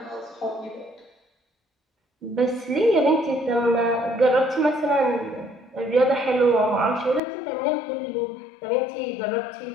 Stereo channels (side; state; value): right; drops out; at 7.2 s